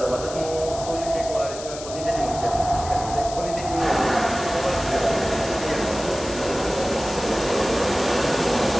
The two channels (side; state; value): left; noise; hiss, 12 dB below the sound